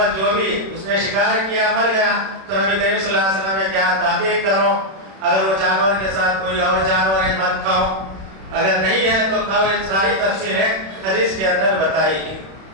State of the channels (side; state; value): left; late; 31 ms